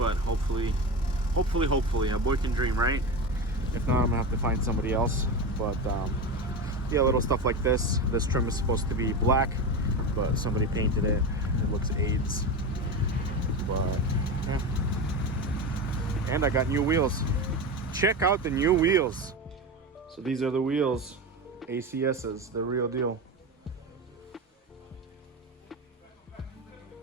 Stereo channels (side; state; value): both; normal; correlation 0.22